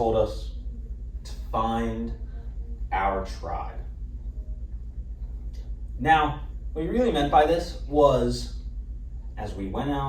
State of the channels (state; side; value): identical; both; correlation 1.00